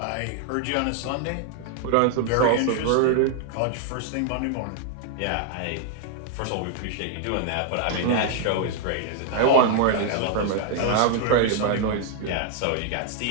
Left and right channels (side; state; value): both; different; correlation 0.00